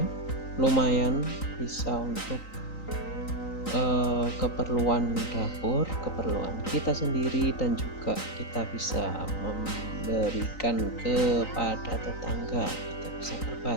lumayan bisa untuk keperluan dapur, keperluan kita sendiri, dan juga kita bisa memberikan kepada tetangga. Kita bisa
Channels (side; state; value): right; late; 3.9 ms